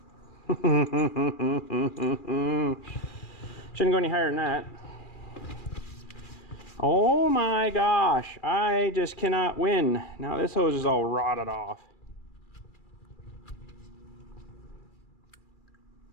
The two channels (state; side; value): late; right; 2.3 ms